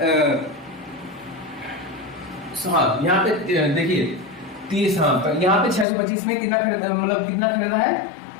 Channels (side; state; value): right; drops out; at 5.9 s